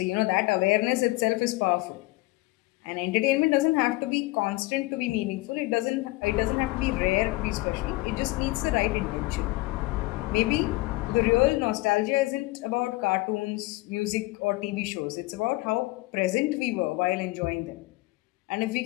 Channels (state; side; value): quieter; right; 21.3 dB